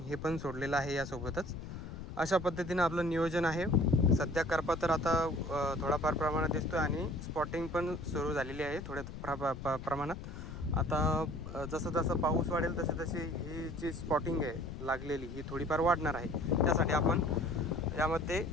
हे पण सोडलेलं आहे यासोबतच. अशा पद्धतीनं आपलं नियोजन आहे. सध्या करपा तर आता थोडाफार प्रमाणात दिसतो आहे आणि स्पॉटिंग पण सुरू झालेली आहे थोड्या प्रमाणात. आता जसं जसं पाऊस वाढेल तसे तसे ही जी स्पॉटिंग आहे लागलेली ही थोडीफार वाढणार आहे. त्यासाठी आपण यामध्ये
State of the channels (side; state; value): left; noise; rumble, 10 dB below the sound